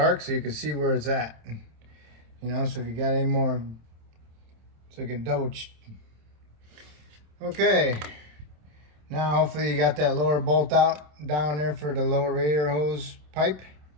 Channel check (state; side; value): late; left; 27 ms